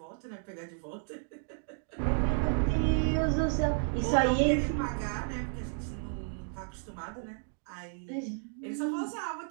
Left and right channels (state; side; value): silent; left; 56 dB below the other